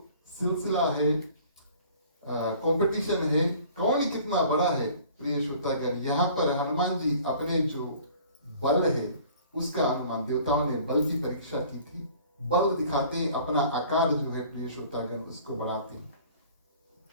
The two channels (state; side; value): inverted; both; correlation -0.50